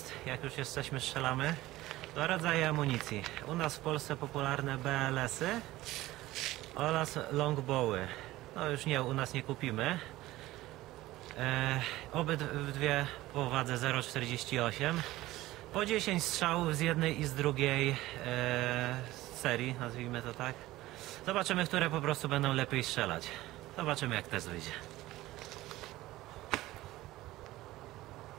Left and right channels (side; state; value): left; quieter; 17.1 dB